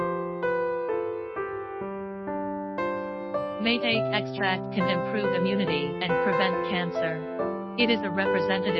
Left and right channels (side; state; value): both; identical; correlation 1.00